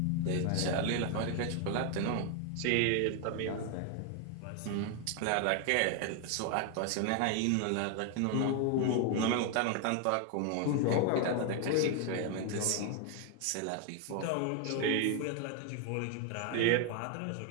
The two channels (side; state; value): both; different; correlation 0.01